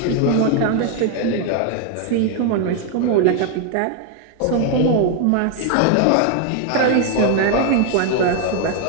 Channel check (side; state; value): both; different; correlation 0.00